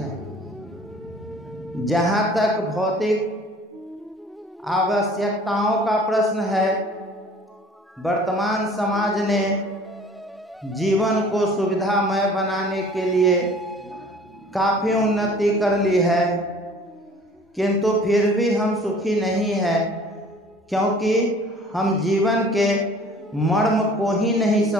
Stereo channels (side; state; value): both; normal; correlation 0.50